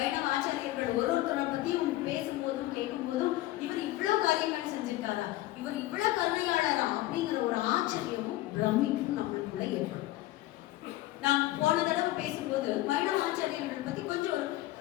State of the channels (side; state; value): right; quieter; 16.5 dB